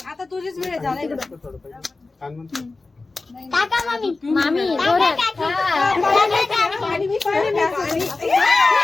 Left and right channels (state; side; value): quieter; right; 3.5 dB